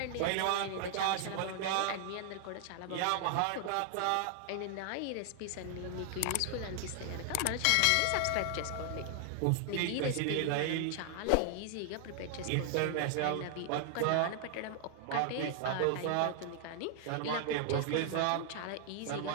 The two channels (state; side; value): different; both; correlation 0.00